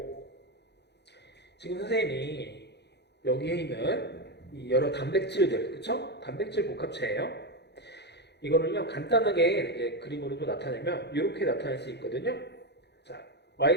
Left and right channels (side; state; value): right; late; 0.49 ms